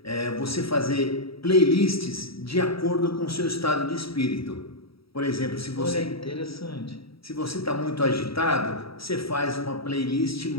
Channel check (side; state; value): right; late; 0.76 ms